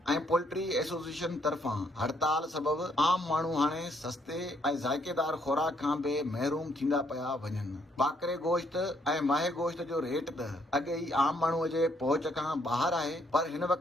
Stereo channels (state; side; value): normal; both; correlation 0.70